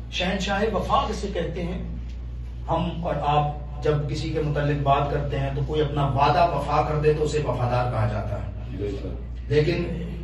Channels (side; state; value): both; identical; correlation 1.00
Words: شہنشاہ وفا کسے کہتے ہیں؟ ہم اور آپ جب کسی کے متعلق بات کرتے ہیں تو کوئی اپنا وعدہ وفا کر دے تو اسے وفادار کہا جاتا ہے، لیکن